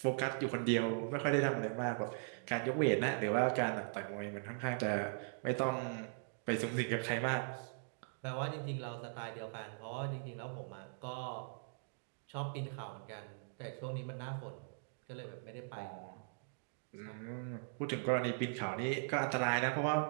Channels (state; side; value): silent; left; digital silence